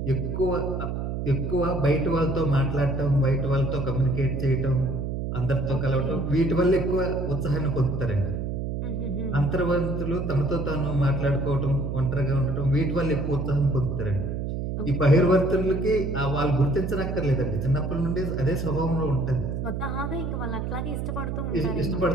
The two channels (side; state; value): right; noise; hum, 3 dB below the sound